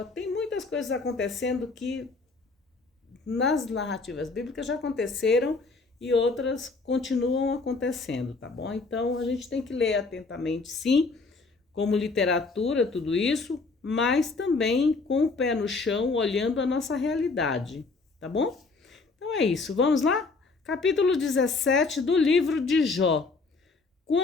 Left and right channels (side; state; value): right; quieter; 3.9 dB